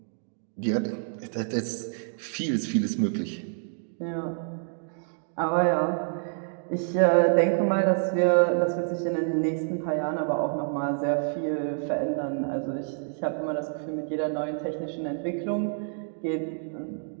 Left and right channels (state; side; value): silent; left; digital silence